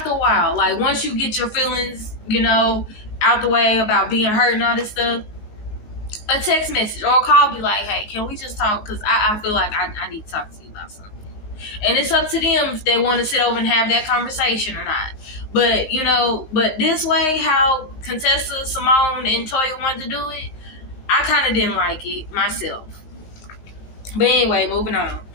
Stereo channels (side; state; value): right; late; 19 ms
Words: a while, like once you get your feelings, you know, out the way about being hurt and all this stuff, a text message or a call be like, hey, can we just talk? Because I feel like I need to talk to you about something. And it's up to them if they want to sit over and have that conversation or not. But, you know, but this way, how Contessa, Simone, and Toya wanted to do it, I kind of didn't like it myself. But anyway, moving on.